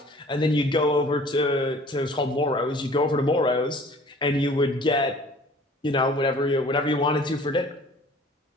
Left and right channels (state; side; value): normal; both; correlation 0.50